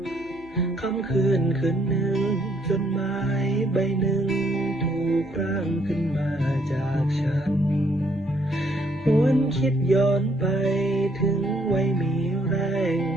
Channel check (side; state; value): left; noise; hum, 25 dB below the sound